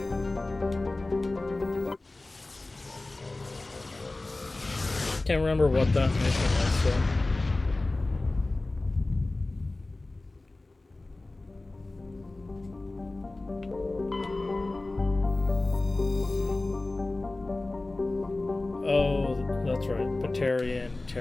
Can't remember what that mission was, so. Oh, that's right. Batarian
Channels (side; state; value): right; quieter; 3.0 dB